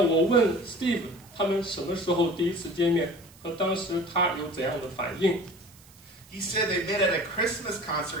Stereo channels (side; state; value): right; noise; hiss, 25 dB below the sound